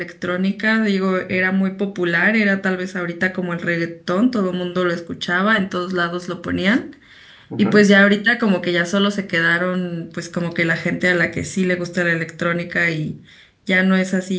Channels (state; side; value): identical; both; correlation 1.00